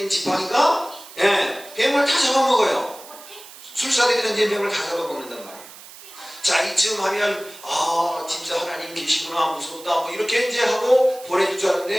지팡이가 뱀을 다 잡아먹어요. 술사들이 던진 뱀을 다 잡아먹는단 말이에요. 자, 이쯤 하면 진짜 하나님 계시구나, 무섭다, 뭐 이렇게 이제 하고 보내줄 줄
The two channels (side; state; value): right; noise; hiss, 18 dB below the sound